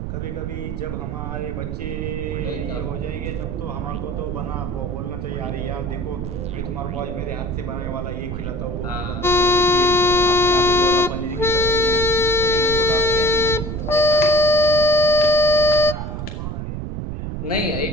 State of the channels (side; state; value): right; noise; rumble, 5 dB below the sound